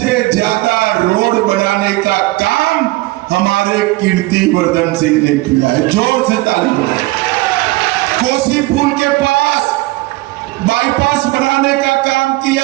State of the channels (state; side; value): quieter; left; 20.4 dB